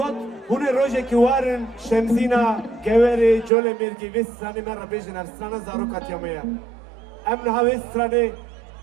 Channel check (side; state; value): left; drops out; at 3.5 s